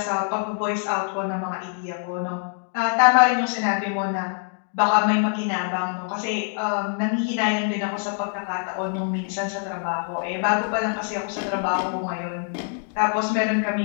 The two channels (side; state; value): right; silent; 56 dB below the other